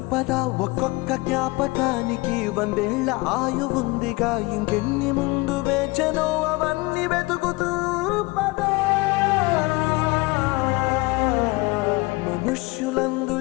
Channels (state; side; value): quieter; right; 23.3 dB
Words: ఒక్కొక్క జ్ఞాపకానికి 100 ఏళ్ల ఆయువుందిగా, ఇంకెన్ని ముందు వేచనో అవన్నీ వెతుకుతూ పదా. మనుష్యులందు